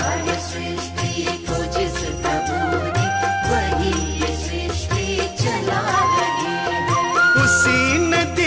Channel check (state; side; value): identical; both; correlation 1.00